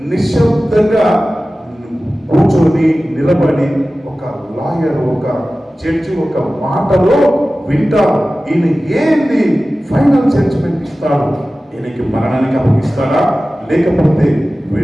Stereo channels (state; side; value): normal; both; correlation 0.96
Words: నిశ్శబ్దంగా కూర్చొని నిలబడి ఒక లాయర్, ఒక జడ్జి ఒక మాటలో వింటారు. ఈయన ఏంది ఫైనల్ జడ్జిమెంట్ ఇస్తాడు, ఈయనకి మరణానికి అప్పగిస్తాడా లేకపోతే